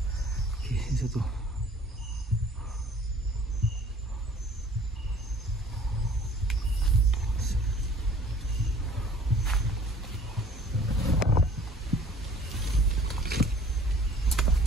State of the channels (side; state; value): both; normal; correlation 0.52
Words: Okey, ini satu.